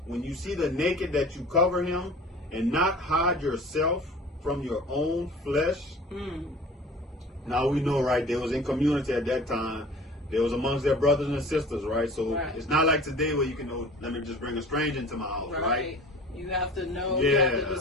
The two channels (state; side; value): normal; both; correlation 0.42